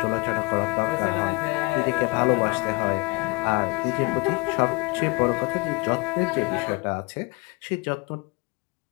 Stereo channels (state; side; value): quieter; right; 25.2 dB